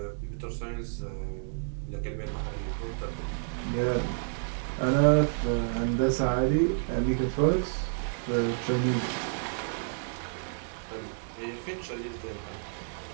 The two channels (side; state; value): left; silent; 58 dB below the other